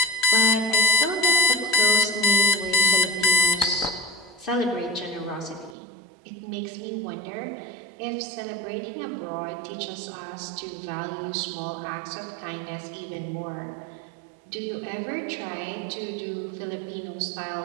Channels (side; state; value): left; drops out; at 5.8 s